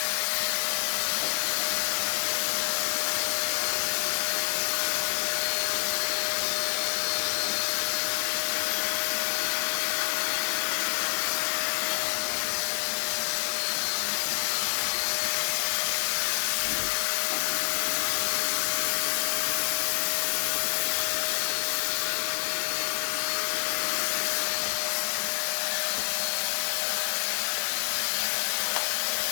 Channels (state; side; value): silent; right; digital silence